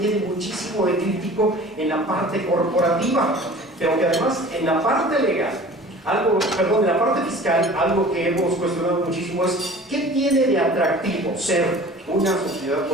muchísimo de crítico en la parte corporativa, pero que además en la parte legal, en la parte fiscal, algo que hemos cuestionado muchísimo es ¿qué tiene de atractivo ser una sociedad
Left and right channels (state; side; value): normal; both; correlation 0.43